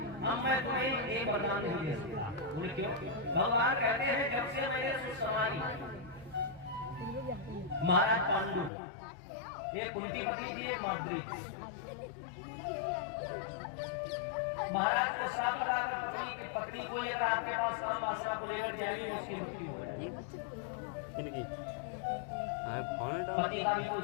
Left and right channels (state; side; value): drops out; right; at 8.7 s